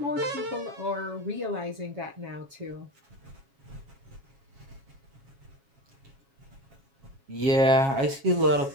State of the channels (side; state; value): left; late; 7.3 ms